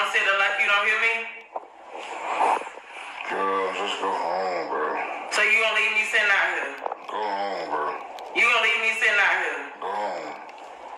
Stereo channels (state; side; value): identical; both; correlation 1.00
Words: sit there like you don't hear me? Girl, just go home, bro. So you gonna leave me sitting out here? Go home, bro. You gonna leave me sitting out here? Go home.